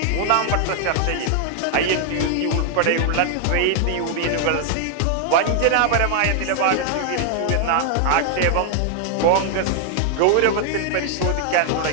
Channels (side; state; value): both; different; correlation 0.00